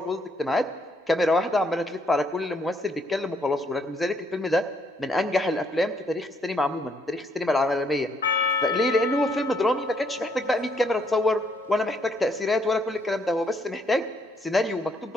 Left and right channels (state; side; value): normal; both; correlation 0.71